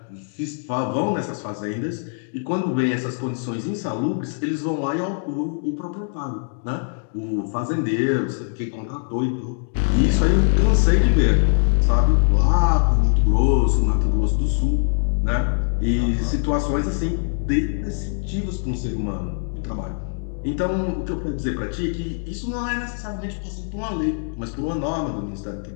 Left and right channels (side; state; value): right; silent; digital silence